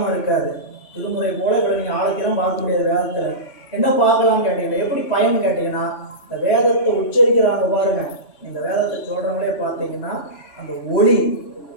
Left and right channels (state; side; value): late; right; 7.1 ms